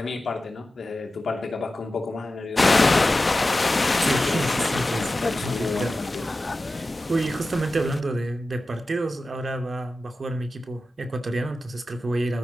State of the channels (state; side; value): normal; both; correlation 0.94